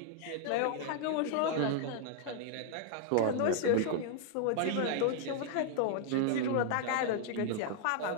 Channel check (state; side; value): different; both; correlation -0.01